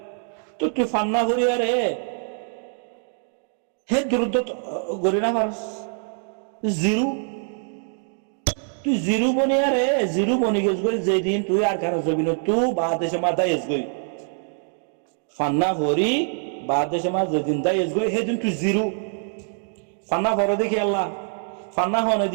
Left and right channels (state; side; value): silent; left; 63 dB below the other